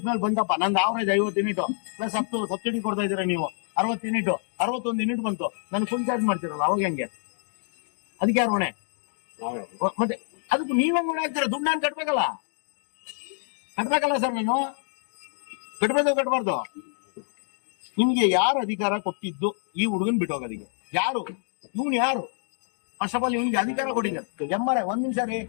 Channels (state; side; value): silent; right; digital silence